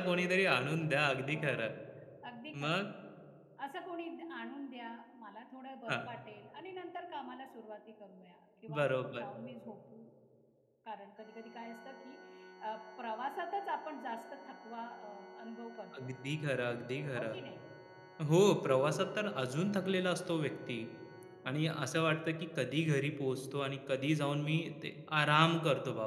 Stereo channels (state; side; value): identical; both; correlation 1.00